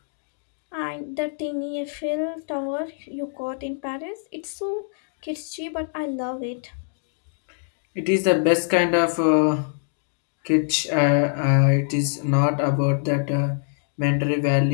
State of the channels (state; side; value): silent; right; digital silence